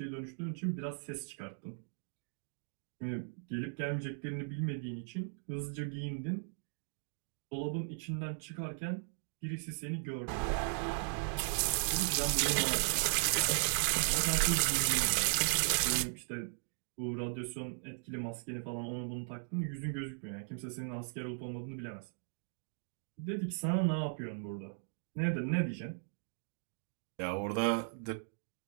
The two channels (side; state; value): left; silent; digital silence